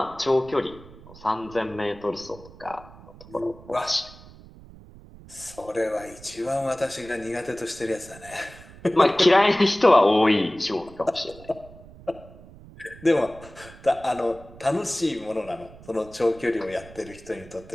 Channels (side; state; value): right; noise; rumble, 20 dB below the sound